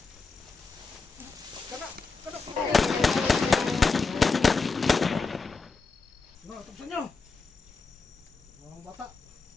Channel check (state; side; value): quieter; right; 4.3 dB